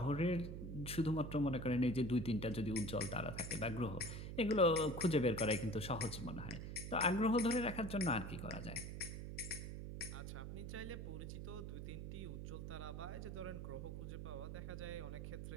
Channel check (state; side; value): noise; right; hum, 7 dB below the sound